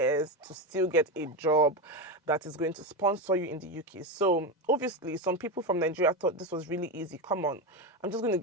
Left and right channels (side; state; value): both; normal; correlation 0.15